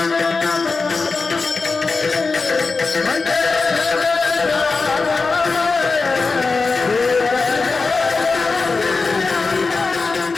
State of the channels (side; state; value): right; quieter; 4.2 dB